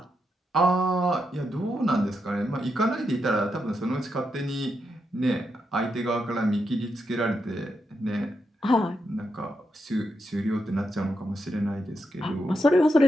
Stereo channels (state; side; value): normal; both; correlation 0.83